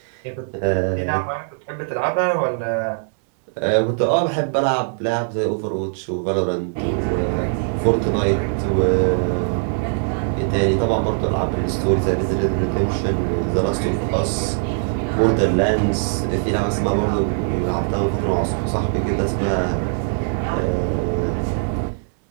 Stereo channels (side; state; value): left; silent; digital silence